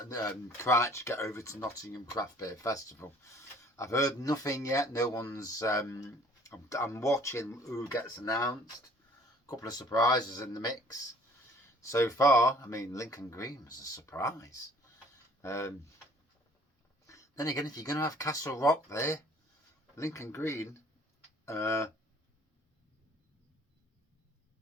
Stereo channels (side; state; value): both; normal; correlation 0.55